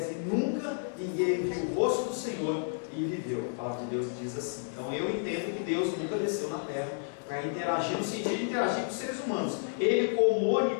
e nunca ninguém viu o rosto do Senhor, e e viveu. A palavra de Deus diz assim. Então eu entendo que Deus nunca desceu na terra para interagir, no sentido de interagir com os seres humanos. Ele, como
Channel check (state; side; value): silent; right; digital silence